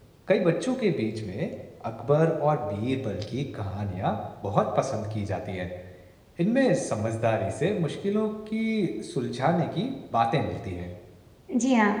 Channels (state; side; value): identical; both; correlation 1.00